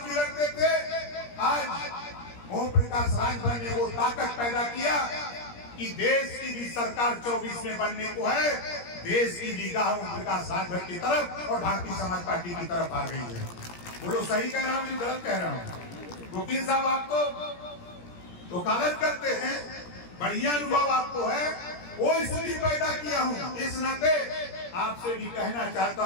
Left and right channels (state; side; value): late; right; 17 ms